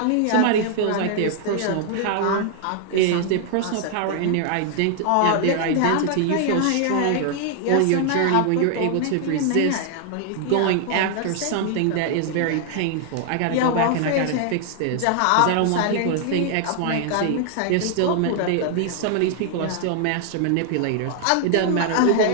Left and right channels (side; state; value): both; different; correlation 0.00